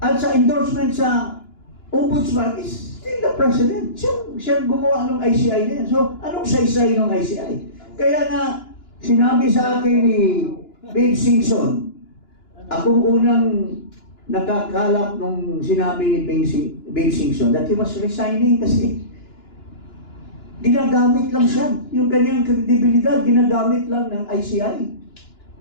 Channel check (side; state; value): right; late; 2.9 ms